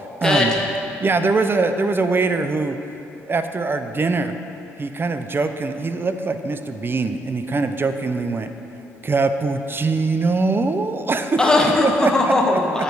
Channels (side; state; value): both; normal; correlation 0.76